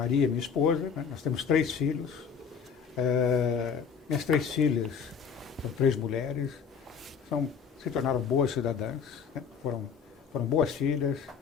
minha esposa, né? Nós temos 3 filhos. Minhas 3 filhas são 3 mulheres, se tornaram boas cidadãs, né? Foram boas filhas,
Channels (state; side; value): quieter; right; 6.6 dB